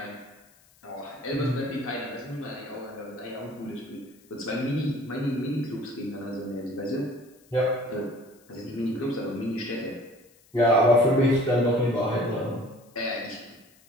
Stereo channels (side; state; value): left; noise; hiss, 30 dB below the sound